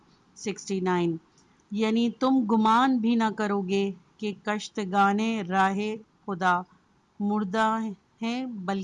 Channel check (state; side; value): identical; both; correlation 1.00